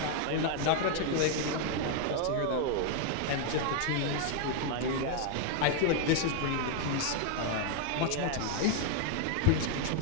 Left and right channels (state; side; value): different; both; correlation 0.00